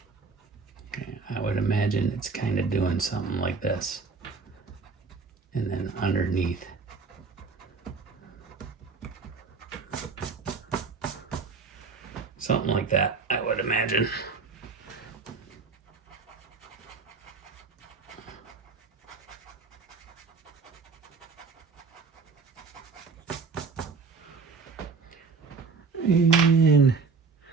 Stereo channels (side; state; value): left; quieter; 4.8 dB